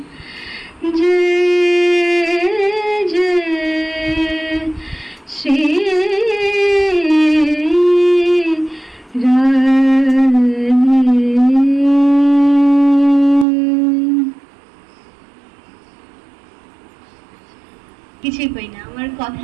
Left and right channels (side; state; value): left; drops out; at 13.5 s